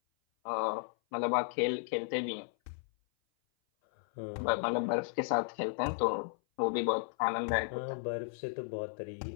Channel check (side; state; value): right; silent; 55 dB below the other